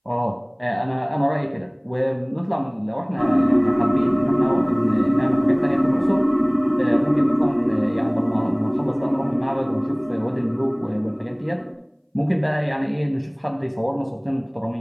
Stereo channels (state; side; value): identical; both; correlation 1.00